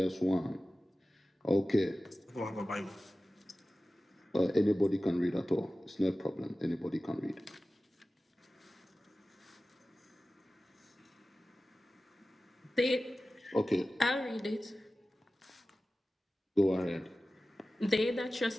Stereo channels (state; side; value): normal; both; correlation 0.95